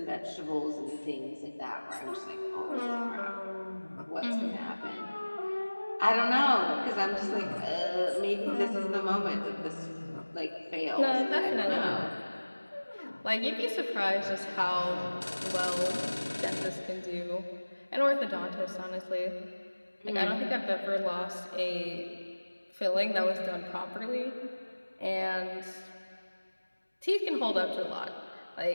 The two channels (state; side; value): inverted; both; correlation -1.00